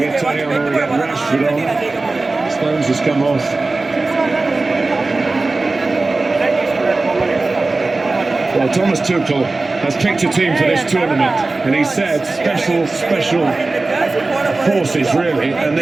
get Tony on, we get Rashford on. Stones has come off. Well, Thomas Tuchel has picked a team for this tournament, and he said special forces, really, and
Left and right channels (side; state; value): left; quieter; 3.4 dB